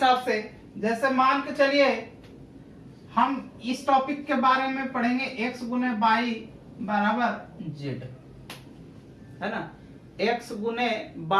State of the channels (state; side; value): identical; both; correlation 1.00